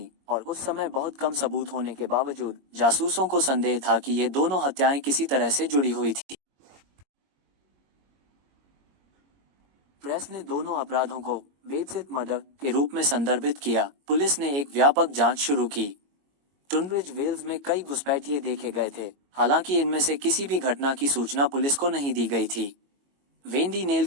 और उस समय बहुत कम सबूत होने के बावजूद जासूसों को संदेह था कि ये दोनों हत्याएं किसी तरह से जुड़ी हुई थी। प्रेस ने दोनों अपराधों को बेडशीट मर्डर के रूप में संदर्भित किया। पुलिस ने एक व्यापक जांच शुरू की। टूनब्रिज वेल्स में कई घुसपैठिए देखे गए थे, हालांकि इनमें से किसी भी घटना की सूचना पुलिस को नहीं दी गई थी। वेंडी नेल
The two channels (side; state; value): left; late; 22 ms